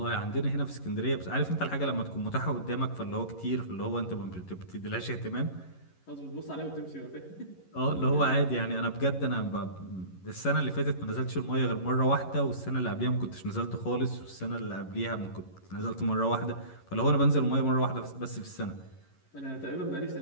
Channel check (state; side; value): late; right; 11 ms